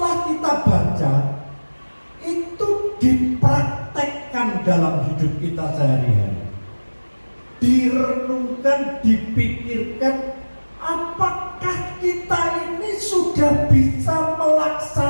kita baca itu dipraktekkan dalam hidup kita sehari-hari. Direnungkan, dipikirkan, apakah kita ini sudah bisa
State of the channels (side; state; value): both; inverted; correlation -1.00